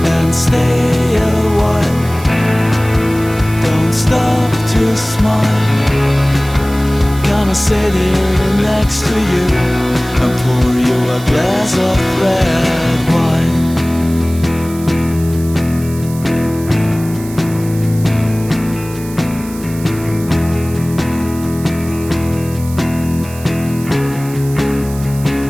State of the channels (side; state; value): right; noise; hiss, 17 dB below the sound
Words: and stay a while. Don't stop to smile. Gonna sit here next to you and pour you a glass of red wine.